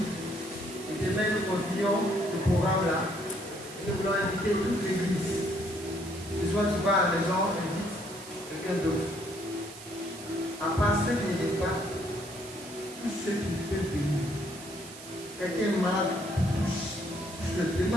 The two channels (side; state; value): right; noise; hiss, 15 dB below the sound